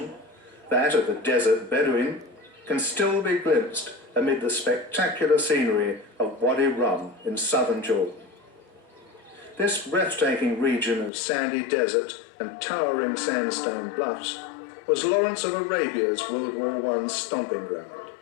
that of the desert Bedouin, can still be glimpsed amid the spectacular scenery of Wadi Rum in southern Jordan. This breathtaking region of sandy desert and towering sandstone bluffs was Lawrence of Arabia's World War I stomping ground.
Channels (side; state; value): right; drops out; at 11.1 s